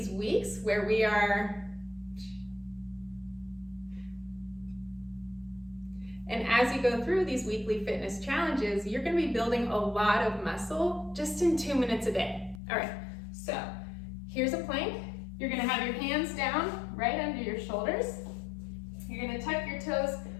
weeks where we are, and as you go through these weekly fitness challenges, you're gonna be building a lot of muscle just in 2 minutes a day. All right, so here's a plank. You're gonna have your hands down right under your shoulders. You're gonna tuck your toes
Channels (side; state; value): right; drops out; at 12.6 s